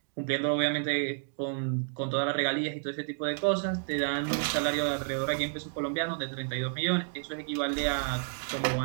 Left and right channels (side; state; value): left; silent; digital silence